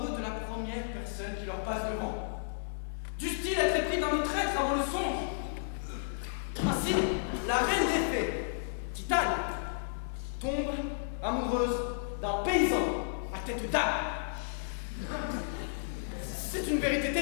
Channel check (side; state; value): right; silent; digital silence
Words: de la première personne qui leur passe devant. Du style être épris d'un autre être avant le songe. Ainsi, la reine des fées, Titane, tombe amoureuse d'un paysan à tête d'âne. C'est une vérité